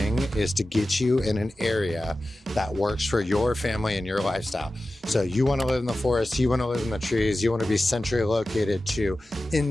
is to get you in an area that works for your family and your lifestyle. So you want to live in the forest, you want to live in the trees, you want to be centrally located to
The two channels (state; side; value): normal; both; correlation 0.94